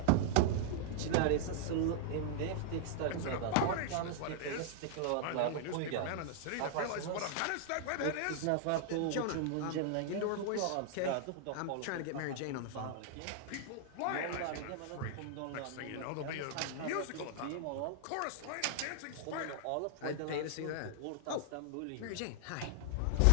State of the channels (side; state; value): both; different; correlation -0.01